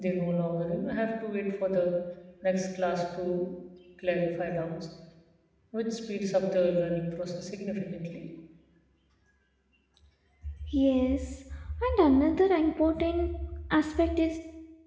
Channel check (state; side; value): identical; both; correlation 1.00